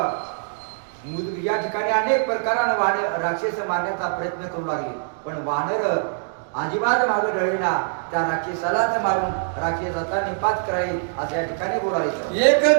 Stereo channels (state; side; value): silent; left; digital silence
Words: या ठिकाणी अनेक प्रकारानं राक्षस मारण्याचा प्रयत्न करू लागले, पण वानर अजिबात मागे ढळीना त्या राक्षसालाच मारून राक्षसाचा निपात कराई असं या ठिकाणी बोलायचं. एक